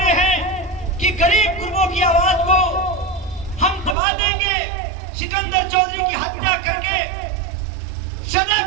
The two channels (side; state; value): left; drops out; at 4.0 s